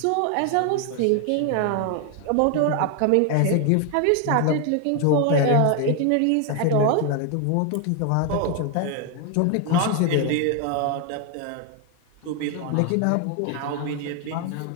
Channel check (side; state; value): both; different; correlation 0.00